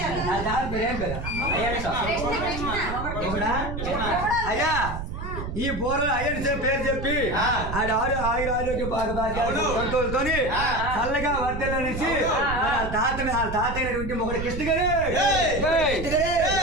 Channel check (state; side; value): noise; right; rumble, 6 dB below the sound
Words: నా దారి ప్రేమ కదా ఎవడా? అయ్యా ఈ బోర్లు అయ్యని పేరు చెప్పి ఆడ ఆయుర ఆరోగ్య సంతోషంతోని చల్లగా వర్ధలనేసి తాతైనటువంటి మొగడు కృష్ణ గారు